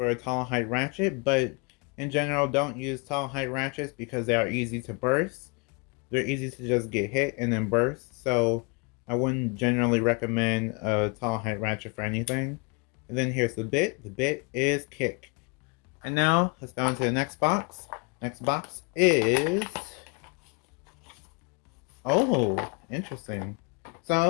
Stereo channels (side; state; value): right; quieter; 31.9 dB